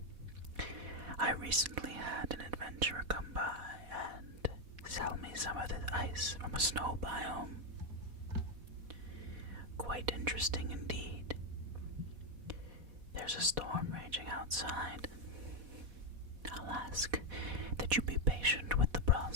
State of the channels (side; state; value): left; late; 4.1 ms